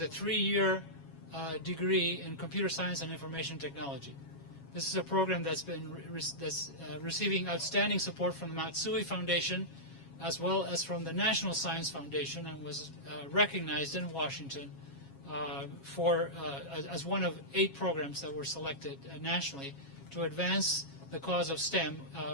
3-year degree in computer science and information technology. This is a program that's been receiving outstanding support from the Matsui Foundation, as well as from the National Science Foundation, and was recognized in Washington as one of 8 programs that were selected nationally to advance the cause of STEM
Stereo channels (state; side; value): late; right; 7.3 ms